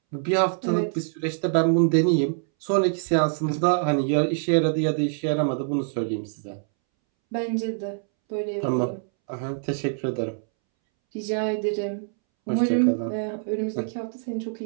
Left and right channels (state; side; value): silent; left; 62 dB below the other